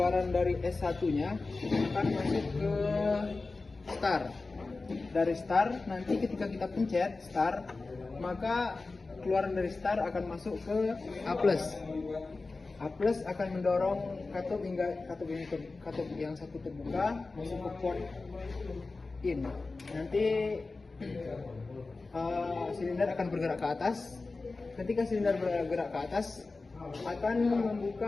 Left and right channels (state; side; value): quieter; right; 3.7 dB